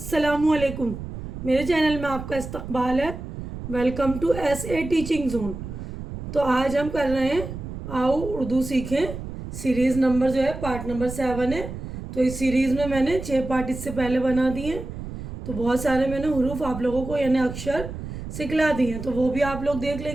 मेरे चैनल में आपका इस्तकबाल है। Welcome to SA teaching zone. तो आज हम कर रहे हैं आओ उर्दू सीखें सीरीज़ नंबर जो है पार्ट नंबर 7 है। तो इस सीरीज़ में मैंने 6 पार्ट इससे पहले बना दिए हैं। तो बहुत सारे मैंने हुरूफ आप लोगों को यानी अक्षर सिखला दिए हैं, तो वो भी आप लोग देख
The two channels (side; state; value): right; noise; rumble, 9 dB below the sound